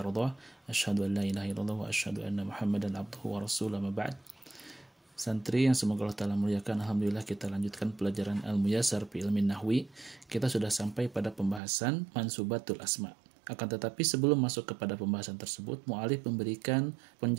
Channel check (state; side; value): drops out; left; at 11.6 s